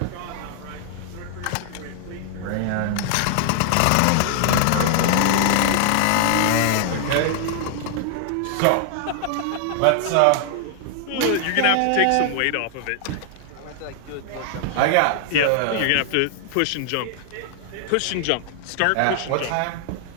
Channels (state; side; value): different; both; correlation 0.00